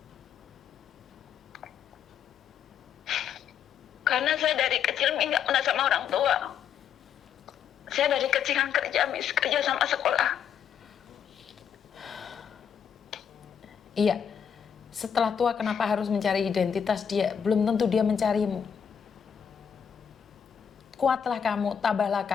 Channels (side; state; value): right; quieter; 7.8 dB